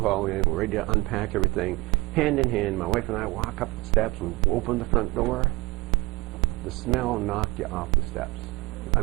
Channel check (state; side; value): quieter; left; 22.0 dB